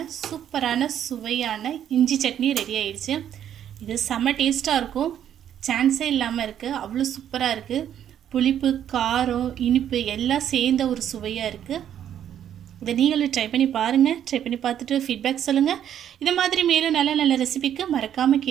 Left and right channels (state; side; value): quieter; left; 10.0 dB